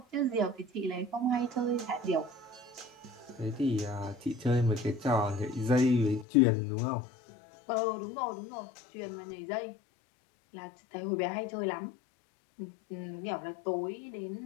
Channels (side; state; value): right; drops out; at 6.2 s